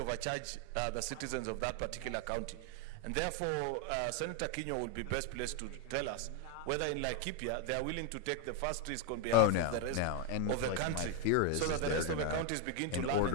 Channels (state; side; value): different; both; correlation 0.01